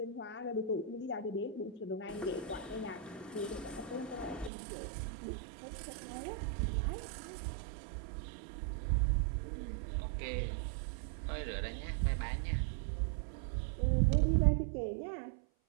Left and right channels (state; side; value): drops out; left; at 4.5 s